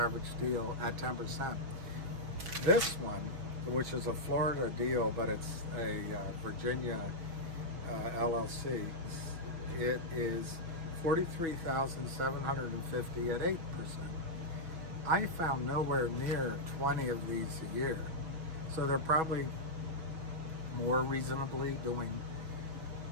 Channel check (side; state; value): left; late; 6.1 ms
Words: deal at 10%. This one, which is a Florida deal, but it's a Virginia LLC, it is $43,750 at 8%. I found nowhere near 20 of these a year. So they're probably more reasonably doing